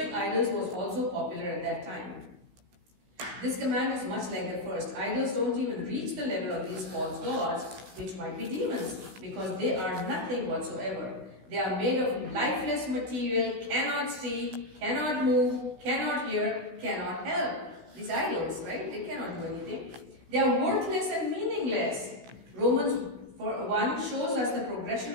idols was also popular at that time. This command is much like the first. Idols don't even reach the level of these false gods, which might be demons, because they are nothing whatsoever. They are made of lifeless material, cannot see, cannot move, cannot hear, cannot help. These idols, right? They cannot do anything. They are worthless and meaningless. Romans 1 shows us the progression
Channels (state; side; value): late; left; 16 ms